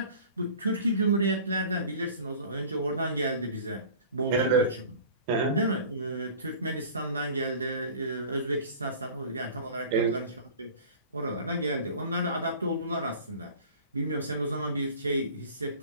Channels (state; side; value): inverted; both; correlation -0.43